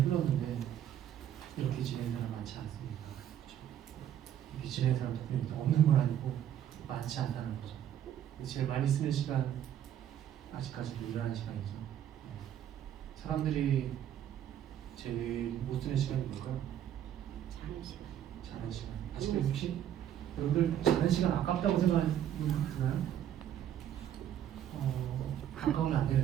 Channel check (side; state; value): left; quieter; 10.5 dB